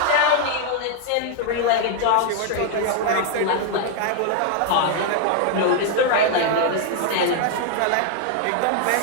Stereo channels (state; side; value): different; both; correlation 0.00